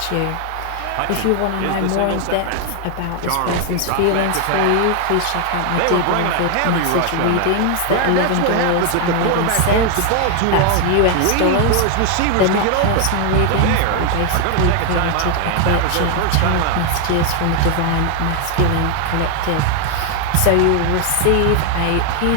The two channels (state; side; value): different; both; correlation 0.00